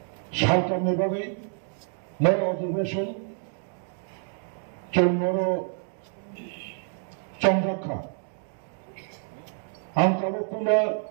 সালটা নেভাবে নয় অধিবেশন চৌমরো চন্দ্রাক্ষা আঙ্কাবকুলা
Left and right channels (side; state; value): left; silent; 60 dB below the other